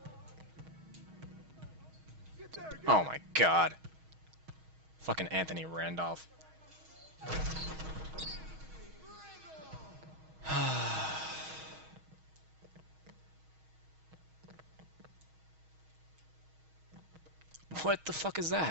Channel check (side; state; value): left; late; 6.3 ms